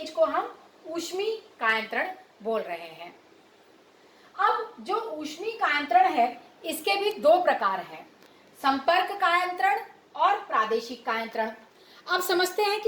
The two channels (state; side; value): identical; both; correlation 1.00